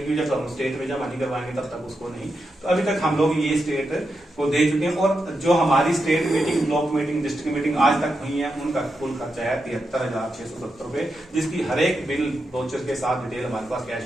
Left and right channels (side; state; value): both; normal; correlation 0.86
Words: जब हम स्टेट में जमा नहीं करवाएंगे तब तक उसको नहीं। तो अभी तक हम लोग ये स्टेट को दे चुके हैं। और जो हमारी state meeting, block meeting, district meeting आज तक हुई है, उनका कुल खर्चा है 73,670 रुपए, जिसकी हर एक बिल वाउचर के साथ डिटेल हमारे पास कैश